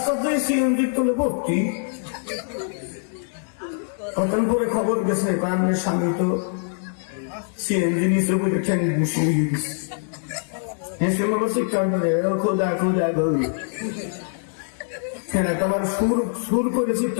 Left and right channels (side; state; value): right; silent; 63 dB below the other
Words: দিয়ে সিএনজি তুলে ভর্তি। কতক্ষণ পরে খবর গেছে আপনার স্বামী তো সিএনজি নিচে বলে ঠ্যাং বসিয়ে গেছে। হেসে মনে চিৎকার করে খোদা খোদা গো, হ্যাঁ তোমার সুর করে